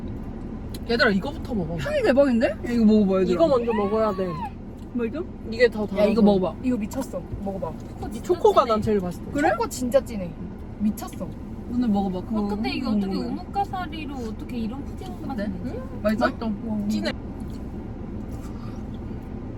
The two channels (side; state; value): both; identical; correlation 1.00